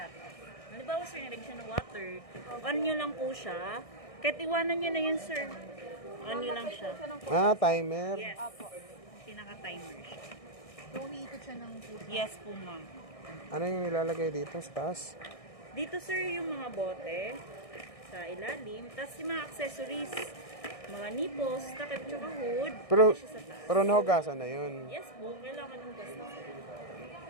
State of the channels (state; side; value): late; right; 1.6 ms